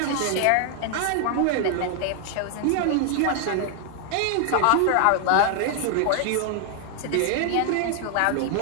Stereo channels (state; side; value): different; both; correlation 0.00